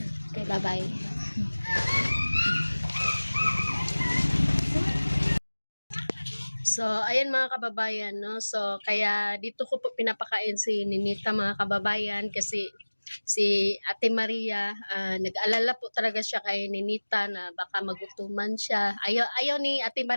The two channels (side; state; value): both; inverted; correlation -1.00